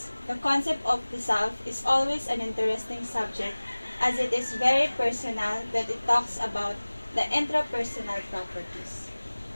the concept of the self is always an interesting subject as it is very personal that it talks about the intrapersonal properties.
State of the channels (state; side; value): inverted; both; correlation -1.00